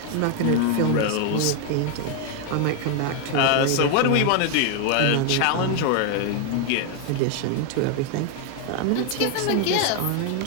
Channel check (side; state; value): both; different; correlation 0.01